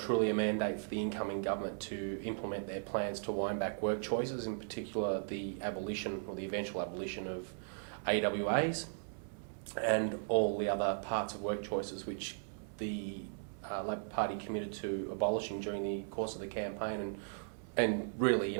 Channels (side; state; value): left; silent; 53 dB below the other